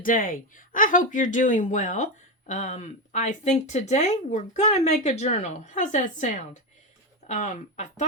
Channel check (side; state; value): both; normal; correlation 0.12